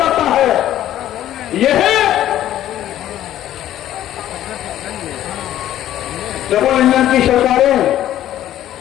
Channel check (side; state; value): right; quieter; 12.5 dB